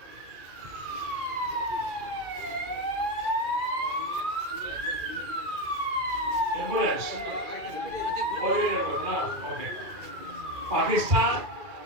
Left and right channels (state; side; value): late; left; 2.4 ms